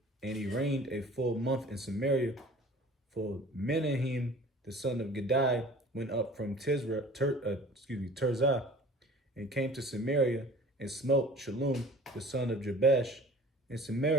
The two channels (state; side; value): normal; both; correlation 0.45